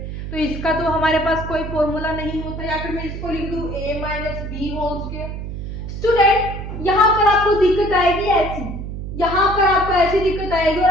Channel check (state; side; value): noise; right; hum, 7 dB below the sound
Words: तो इसका तो हमारे पास कोई फॉर्मूला नहीं होता, या फिर मैं इसको लिख दूं a minus b whole square. Student यहाँ पर आपको दिक्कत आएगी ऐसी, यहाँ पर आपको ऐसी दिक्कत आएगी और